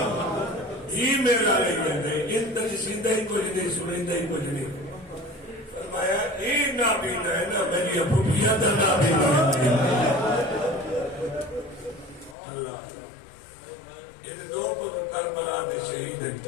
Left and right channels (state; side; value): drops out; right; at 12.4 s